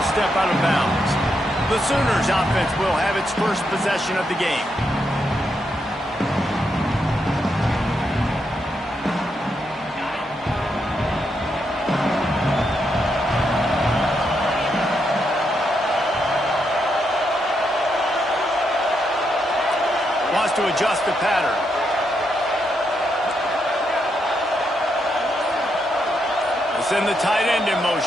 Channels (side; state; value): both; normal; correlation 0.80